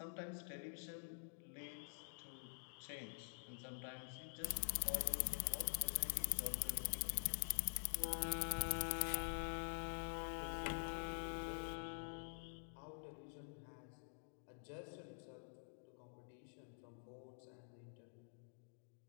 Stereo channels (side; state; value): right; silent; digital silence